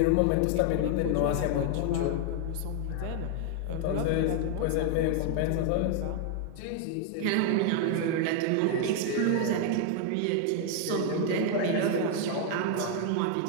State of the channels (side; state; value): both; different; correlation 0.00